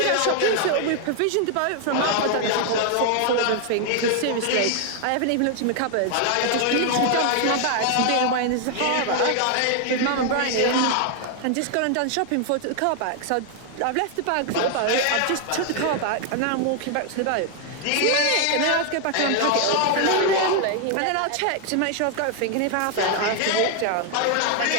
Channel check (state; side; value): different; both; correlation 0.00